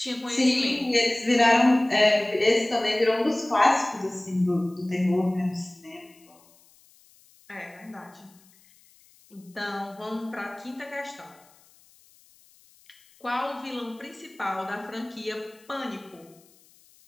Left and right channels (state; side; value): noise; left; hiss, 29 dB below the sound